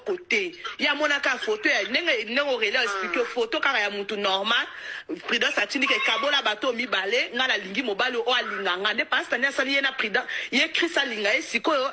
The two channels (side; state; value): both; identical; correlation 1.00